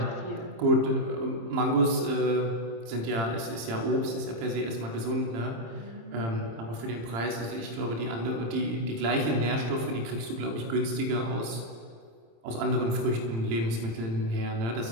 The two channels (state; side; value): late; left; 26 ms